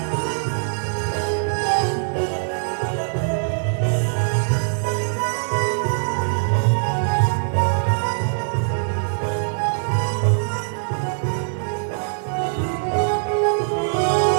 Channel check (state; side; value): silent; left; 64 dB below the other